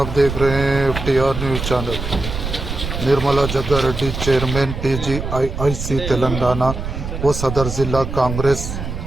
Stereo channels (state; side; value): noise; right; rumble, 6 dB below the sound